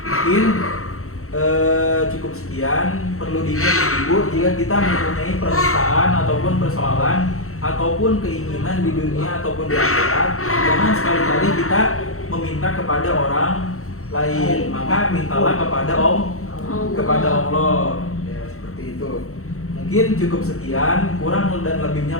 Mungkin cukup sekian. Perlu diingat ibu, jika kita mempunyai permintaan ataupun persoalan ataupun keinginan di dunia ataupun di akhirat, jangan sekali-kali kita meminta kepada orang lain, maka mintalah kepada Allah. Ya, seperti itu. Mungkin cukup sekian, kurang dan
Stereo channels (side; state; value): right; late; 0.63 ms